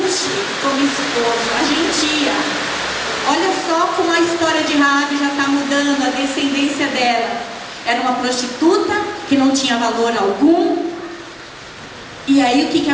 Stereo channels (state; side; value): identical; both; correlation 1.00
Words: como esposo, a gentia. Olha só como a história de Raabe já está mudando, a descendência dela. Era uma prostituta que não tinha valor algum. E aí o que